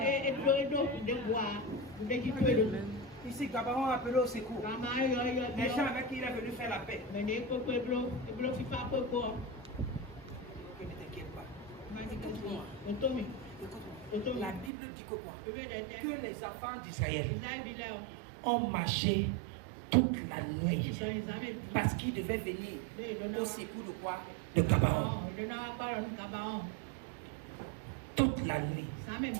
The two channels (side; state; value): left; drops out; at 14.7 s